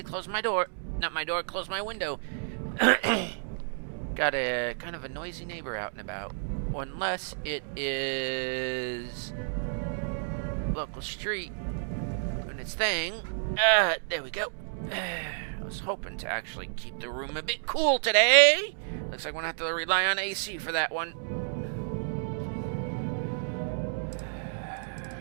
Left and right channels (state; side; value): silent; left; digital silence